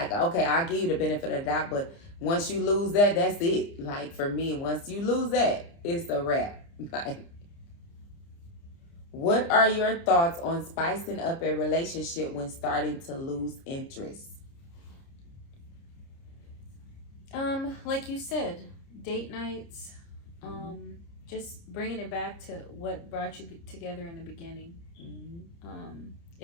okay, I'll give you the benefit of the doubt, but once you lose that, that's it. Like, for me, once you lose that, it's a wrap. Like, what are your thoughts on spicing up a relationship when starting to lose interest? Like you said, date nights, just bringing it back to what brought you together in the beginning. Mm-hmm.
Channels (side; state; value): right; late; 30 ms